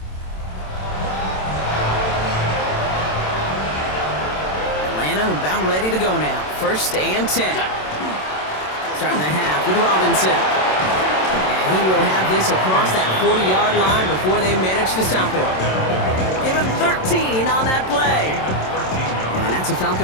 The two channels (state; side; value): late; right; 27 ms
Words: Atlanta about ready to go now. 1st and 10. Starting the half with Robinson. And he will have this across that 40-yard line before they manage to stop him. Give him 13 on that play. And that's a